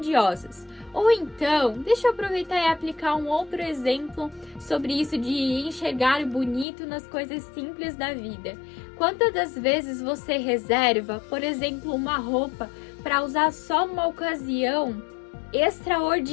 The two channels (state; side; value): drops out; right; at 6.7 s